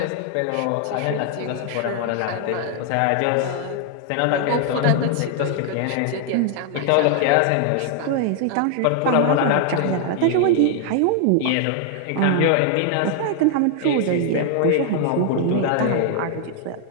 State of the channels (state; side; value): different; both; correlation 0.00